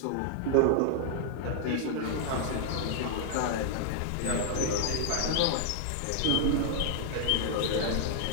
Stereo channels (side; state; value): both; different; correlation 0.00